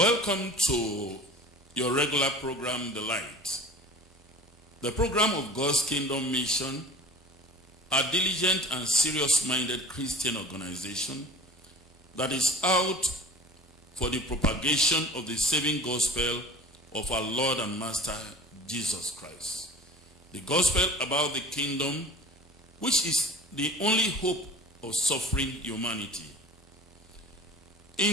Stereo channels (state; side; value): normal; both; correlation 0.41